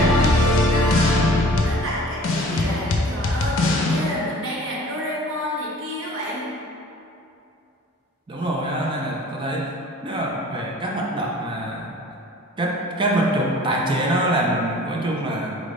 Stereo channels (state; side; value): normal; both; correlation 0.47